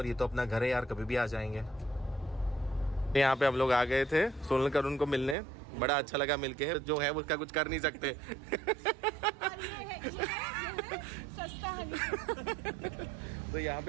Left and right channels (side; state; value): left; drops out; at 5.4 s